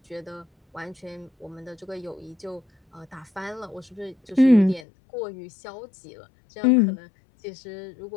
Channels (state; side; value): drops out; right; at 4.9 s